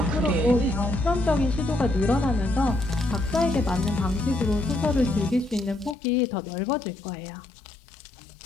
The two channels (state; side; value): drops out; right; at 6.0 s